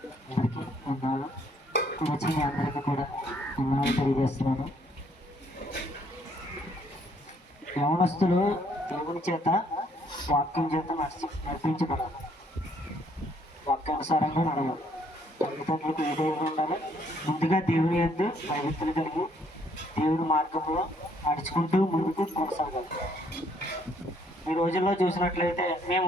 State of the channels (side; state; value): both; normal; correlation 0.66